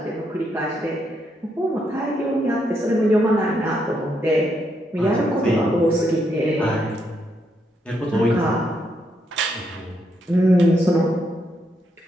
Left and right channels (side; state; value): both; normal; correlation 0.78